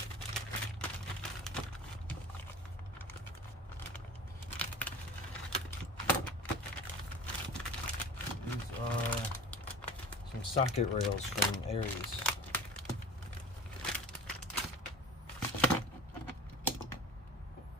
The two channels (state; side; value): normal; both; correlation 0.38